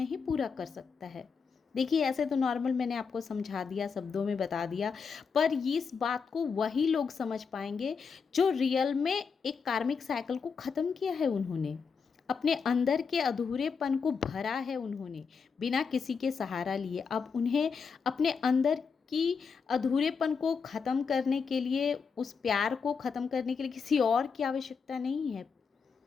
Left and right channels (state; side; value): quieter; right; 5.7 dB